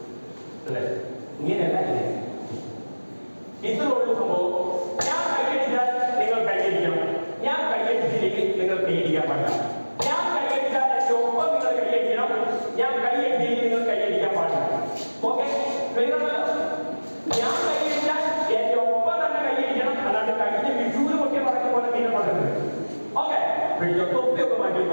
അല്ലേ? ഇങ്ങനെയല്ല ഇല്ലേ? ഇത്രയുള്ള സംഭവം. ഞാൻ കൈയടിച്ചാൽ നിങ്ങൾ കൈയടിക്കണം. ഞാൻ കൈയടിച്ചില്ലെങ്കിൽ നിങ്ങൾ കൈയടിക്കാൻ പാടില്ല. ഞാൻ കൈയടിച്ചാൽ എന്റെ ഒപ്പം നിങ്ങൾ കൈയടിക്കണം. ഞാൻ കൈയടിച്ചില്ലെങ്കിൽ നിങ്ങൾ കൈയടിക്കാൻ പാടില്ല. ഓക്കെ? ഞാൻ കൈയടിച്ചാൽ എന്റെ ഒപ്പം തന്നെ കൈയടിക്കണം. അല്ലാണ്ട് കഴിഞ്ഞ വിഷുവിന് പൊട്ടിയ പറഞ്ഞ പോലെ പിന്നെ പറ്റുന്നത്. ഓക്കെ? പിടിച്ചോ. തൊപ്പിയൊക്കെ മാറ്റി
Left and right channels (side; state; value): both; inverted; correlation -1.00